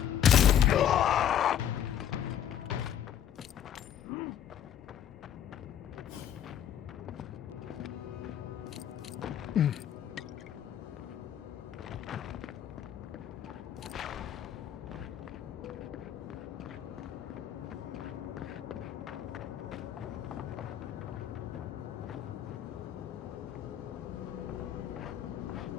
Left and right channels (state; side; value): quieter; right; 10.0 dB